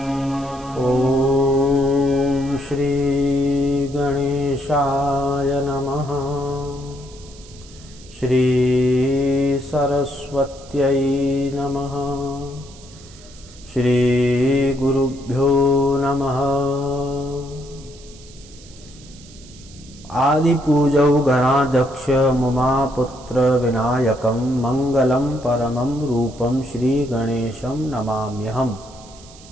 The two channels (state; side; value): noise; right; hiss, 22 dB below the sound